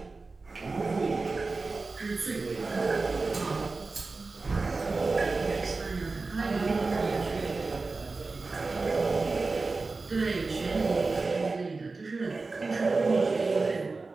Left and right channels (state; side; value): quieter; left; 3.8 dB